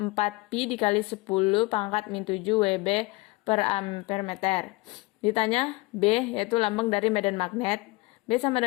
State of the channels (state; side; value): quieter; right; 23.0 dB